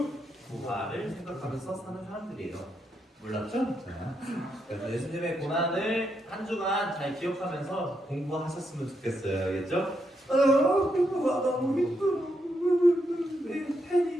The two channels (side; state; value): both; normal; correlation 0.81